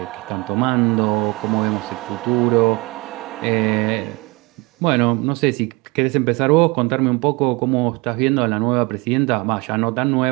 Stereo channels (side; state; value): left; quieter; 25.4 dB